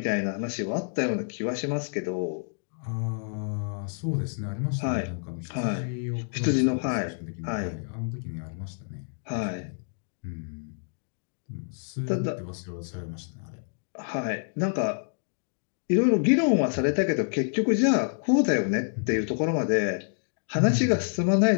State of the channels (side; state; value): right; silent; digital silence